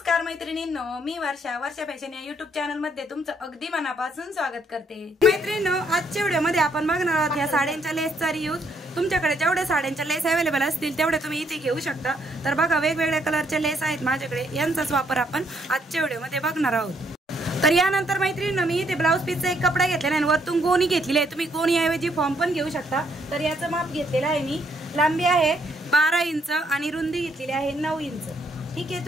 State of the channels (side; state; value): both; normal; correlation 0.71